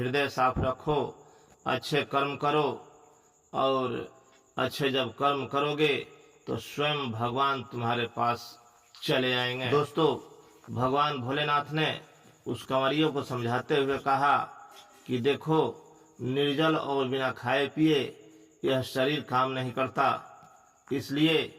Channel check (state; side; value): identical; both; correlation 1.00